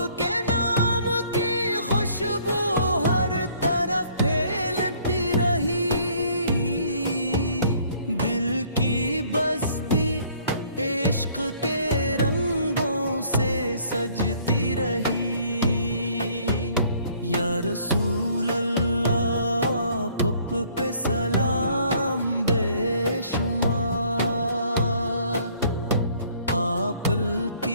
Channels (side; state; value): both; inverted; correlation -0.60